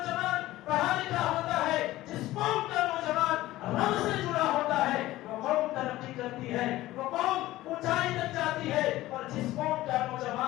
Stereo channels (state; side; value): quieter; right; 16.5 dB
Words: پڑھا لکھا ہوتا ہے، جس قوم کا نوجوان رب سے جڑا ہوتا ہے، وہ قوم ترقی کرتی ہے، وہ قوم اونچائی تک جاتی ہے۔ اور جس قوم کا